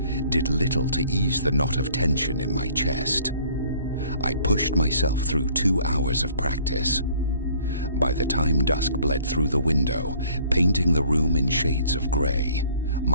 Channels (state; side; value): inverted; both; correlation -0.56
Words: did little to ease the knot of tension in my chest. I pushed myself through 2 hours of practice. By the time dusk bled through the window, painting the room in shades of gray,